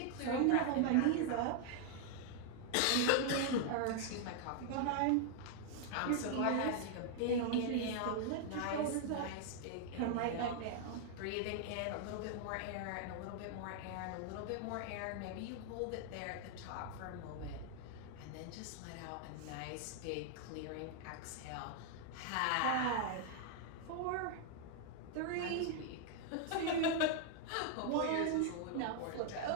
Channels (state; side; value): different; both; correlation 0.00